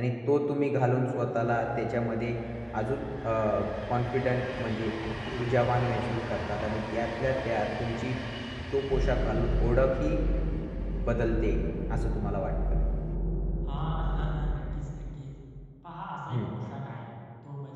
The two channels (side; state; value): both; identical; correlation 1.00